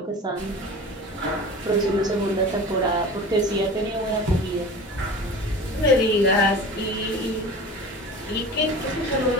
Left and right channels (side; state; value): both; normal; correlation 0.36